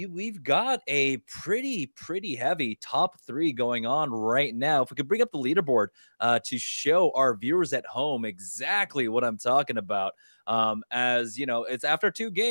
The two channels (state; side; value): inverted; both; correlation -1.00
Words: got a pretty heavy top 3 going on right now. If we could bring up the leaderboard to show our viewers at home exactly what I'm talking about. As you know, it's after 2